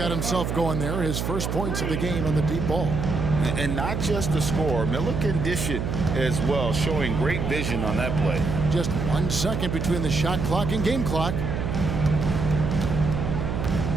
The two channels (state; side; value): noise; right; hum, 2 dB below the sound